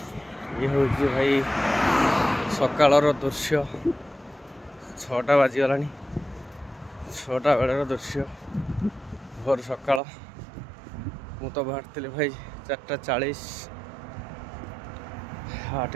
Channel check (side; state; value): left; drops out; at 10.0 s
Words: ये हूँ भाई सकाळर दृश्य 6टा बाजीगला 6टा बेलर दृश्य भोर सकाळ। मु तो बाहर भाई 4:40